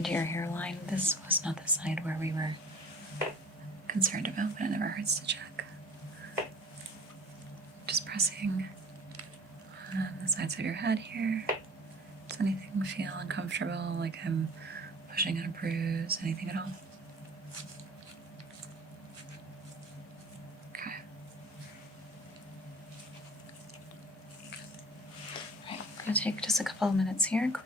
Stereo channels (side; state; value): both; normal; correlation 0.44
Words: your hairline. This was not the side where we were concerned about, but it never hurts to check. Just pressing on the sides of your head here. Does anything feel uncomfortable, like I'm pushing on a bruise, anything at all? Okay. All right, I'm gonna take just a couple of minutes here,